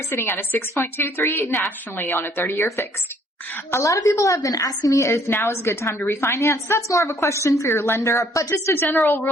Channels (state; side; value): normal; both; correlation 0.62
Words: sitting at a 6.23 nationally on a 30-year fixed. A lot of people have been asking me if now is a good time to refinance. That's more of a question for your lender, but just a general